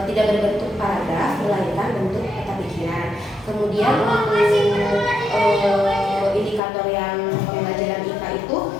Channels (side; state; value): right; drops out; at 6.6 s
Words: berbentuk paragraf, melainkan bentuk peta pikiran. Kemudian untuk indikator yang pembelajaran IPA itu